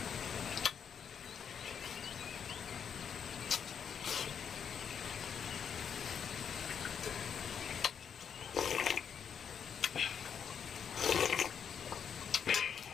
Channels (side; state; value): right; quieter; 7.5 dB